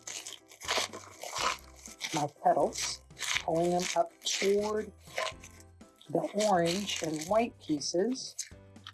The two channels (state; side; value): identical; both; correlation 1.00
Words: my petals, pulling them up toward the orange and white pieces.